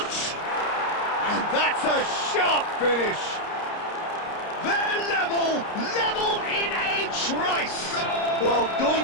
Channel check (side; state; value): right; late; 30 ms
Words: And that's a sharp finish. They're level in a trice. Well,